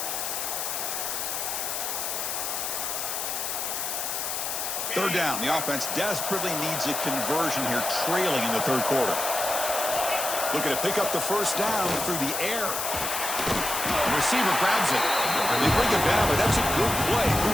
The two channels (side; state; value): left; noise; hiss, 2 dB below the sound